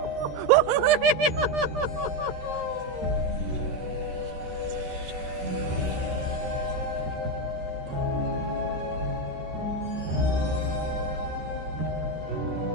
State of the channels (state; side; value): late; left; 13 ms